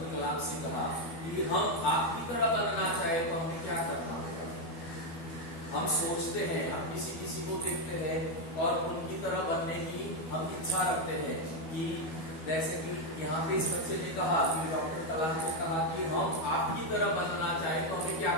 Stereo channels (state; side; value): late; right; 12 ms